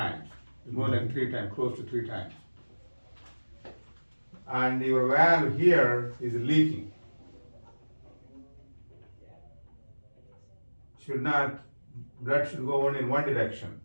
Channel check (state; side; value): inverted; both; correlation -1.00